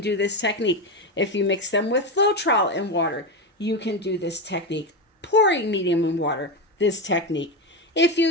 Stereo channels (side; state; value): both; normal; correlation 0.13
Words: this technique. If you mix them with Floetrol and water, you can do this technique. Pouring medium in water, this technique. If you